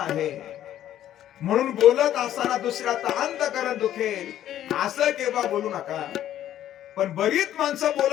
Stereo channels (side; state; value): right; quieter; 11.8 dB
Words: म्हणून बोलत असताना दुसऱ्याचा अंतःकरण दुखेल असं केव्हा बोलू नका. पण बरीच माणसं